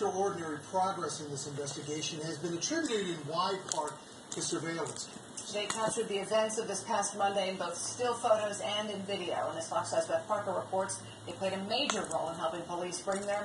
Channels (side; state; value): both; identical; correlation 1.00